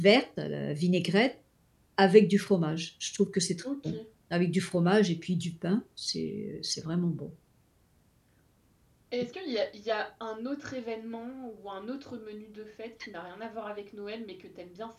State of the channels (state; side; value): identical; both; correlation 1.00